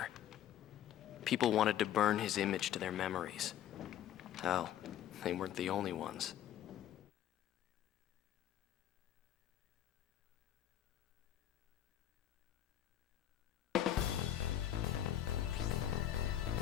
People wanted to burn his image to their memories. Hell, they weren't the only ones.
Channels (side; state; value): right; quieter; 11.2 dB